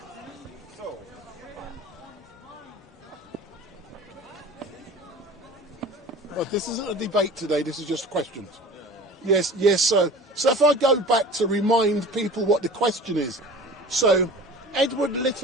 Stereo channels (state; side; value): normal; both; correlation 0.40